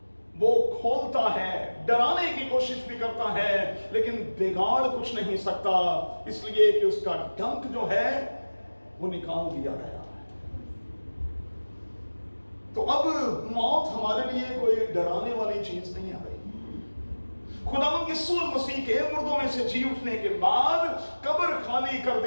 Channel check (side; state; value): both; inverted; correlation -1.00